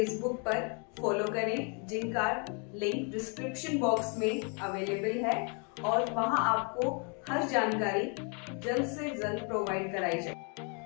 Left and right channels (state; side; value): quieter; right; 36.6 dB